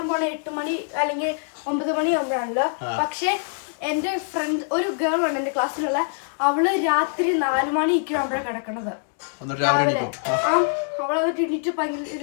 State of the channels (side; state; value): right; silent; digital silence